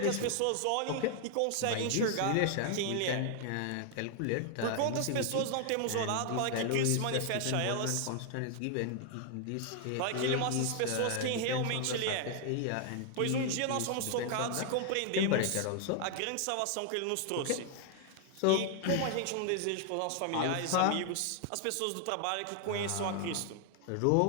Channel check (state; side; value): different; both; correlation 0.00